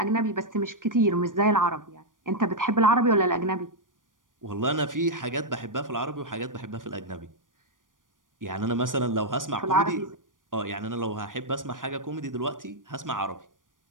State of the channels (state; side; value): late; left; 0.89 ms